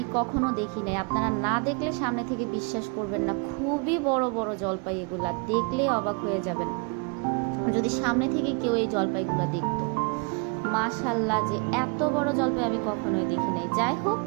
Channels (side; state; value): left; quieter; 33.1 dB